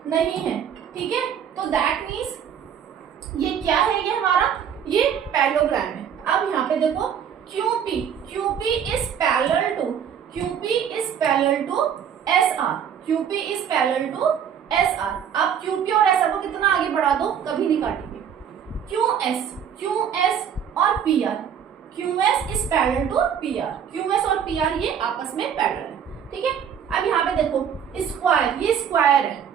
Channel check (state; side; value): quieter; left; 8.3 dB